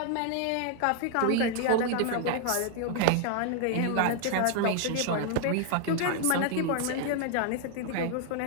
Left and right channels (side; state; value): both; different; correlation 0.00